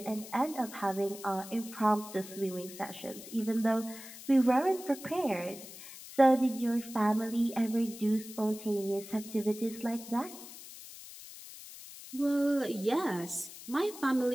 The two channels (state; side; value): noise; left; hiss, 15 dB below the sound